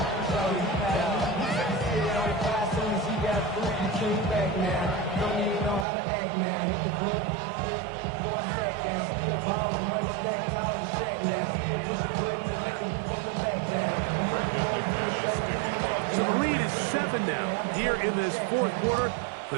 So the lead is 7 now. Here in this fourth quarter,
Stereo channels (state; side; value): drops out; left; at 5.9 s